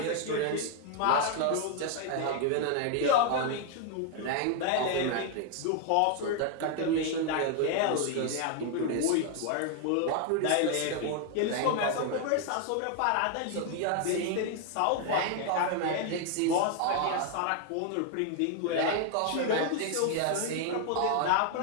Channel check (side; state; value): both; different; correlation 0.00